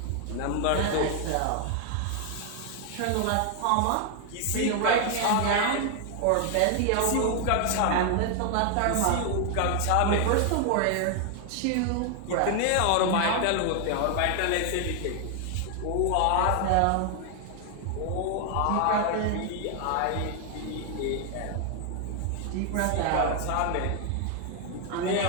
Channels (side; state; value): both; different; correlation 0.00